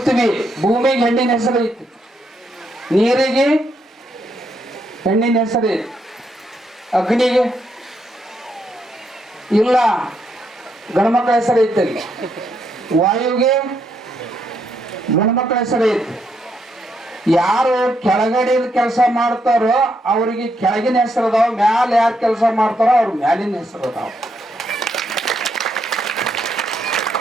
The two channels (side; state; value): both; normal; correlation 0.77